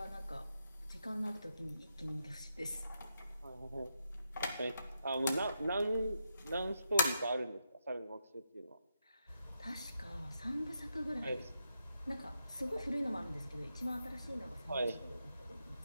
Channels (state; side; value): inverted; both; correlation -0.83